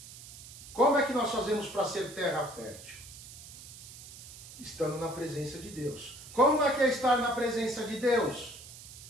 Como é que nós fazemos para ser terra fértil? Estando na presença de Deus. Como é que é estar na presença de Deus?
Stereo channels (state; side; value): noise; right; hiss, 15 dB below the sound